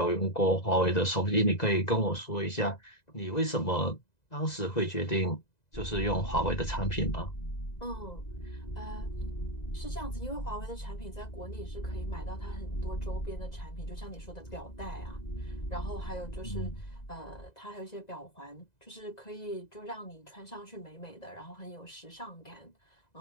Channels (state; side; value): late; right; 2.0 ms